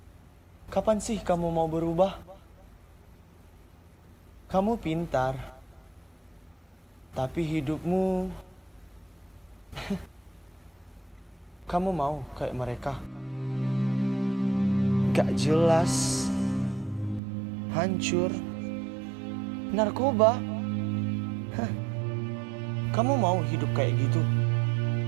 kapan sih kamu mau berubah? Kamu pintar, tapi hidupmu kamu mau kayak mereka. Gak jelas, hancur, narkoba. Kamu mau hidup kayak gitu?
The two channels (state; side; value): drops out; left; at 17.2 s